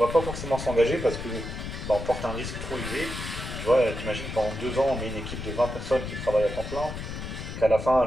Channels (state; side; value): noise; left; rumble, 7 dB below the sound